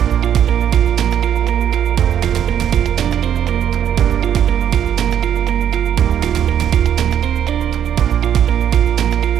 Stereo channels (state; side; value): quieter; left; 9.6 dB